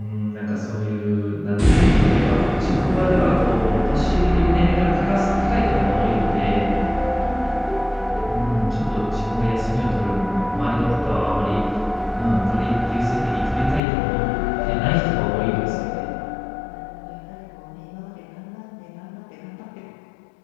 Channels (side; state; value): right; drops out; at 13.8 s